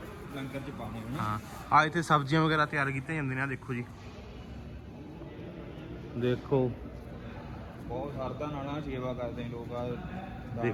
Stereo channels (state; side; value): identical; both; correlation 1.00